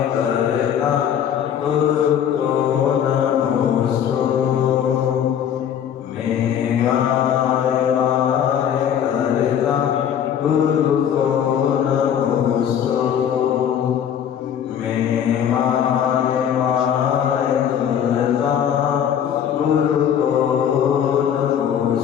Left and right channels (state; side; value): quieter; right; 9.1 dB